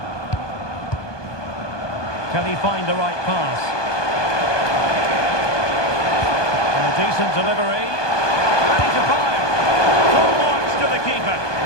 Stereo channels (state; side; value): late; right; 1.2 ms